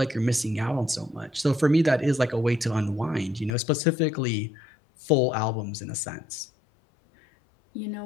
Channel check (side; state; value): right; drops out; at 3.6 s